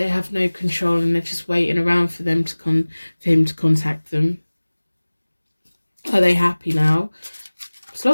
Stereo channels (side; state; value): both; inverted; correlation -1.00